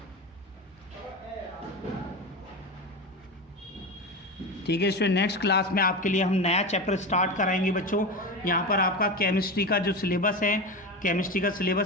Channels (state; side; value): normal; both; correlation 0.22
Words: ठीक है स्टूडेंट, नेक्स्ट क्लास में आपके लिए हम नया चैप्टर स्टार्ट कराएंगे बच्चों। यहाँ पर आपका केमिस्ट्री का जो सिलेबस है, केमिस्ट्री का